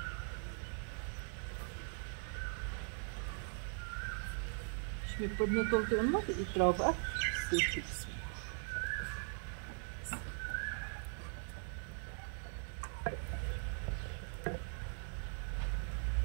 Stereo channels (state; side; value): silent; left; 51 dB below the other